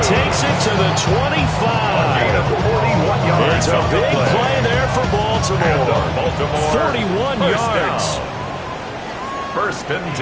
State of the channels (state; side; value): identical; both; correlation 1.00